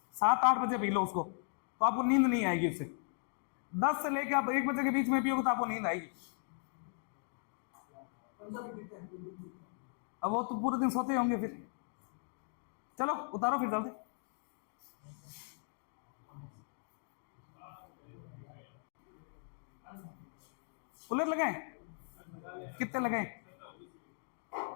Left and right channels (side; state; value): right; silent; 53 dB below the other